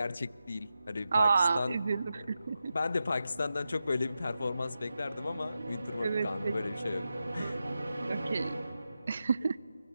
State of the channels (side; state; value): both; inverted; correlation -0.90